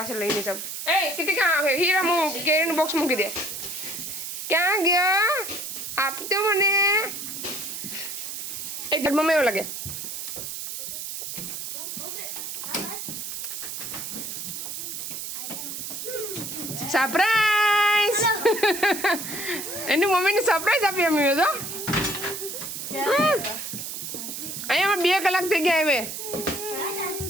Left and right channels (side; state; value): right; noise; hiss, 6 dB below the sound